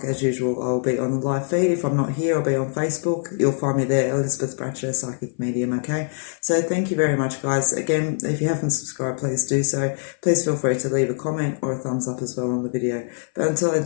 as usual. I'll be on the live feed. If I'm not here, I'll be on Facebook. You'll find me there, Elizabeth Bratcher, Psychic Medium, okay? So thank you very much, guys. Again, if you haven't subscribed, please do so. Please feel free to leave a comment or a thumbs up as well on the video. But until I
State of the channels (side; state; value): right; silent; 59 dB below the other